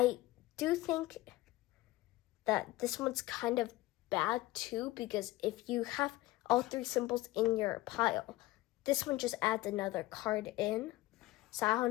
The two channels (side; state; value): right; quieter; 18.3 dB